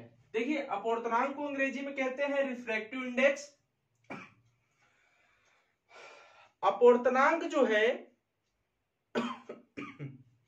देखिए, अपवर्तनांक को अंग्रेजी में कहते हैं रिफ्रैक्टिव इंडेक्स। अपवर्तनांक जो है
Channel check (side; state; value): both; identical; correlation 1.00